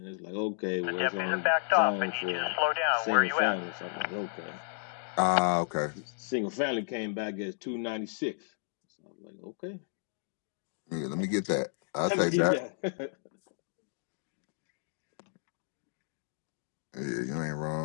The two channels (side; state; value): right; silent; digital silence